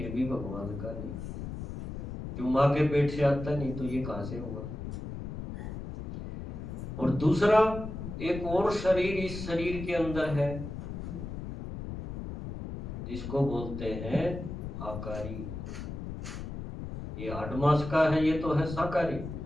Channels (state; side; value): noise; left; rumble, 7 dB below the sound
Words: भी भगवान का नहीं, क्यों? माँ के पेट से आता नहीं तो ये कहां से होगा? और दूसरा एक और शरीर इस शरीर के अंदर है जिसको बोलते हैं आकारी। ये 8 मास का है, ये तो है साकारी।